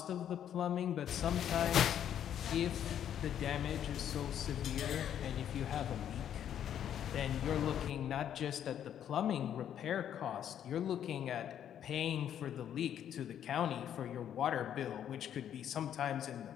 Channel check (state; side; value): quieter; right; 9.9 dB